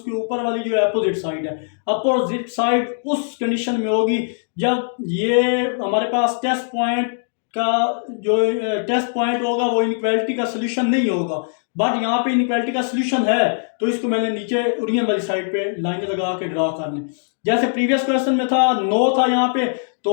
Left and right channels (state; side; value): silent; right; digital silence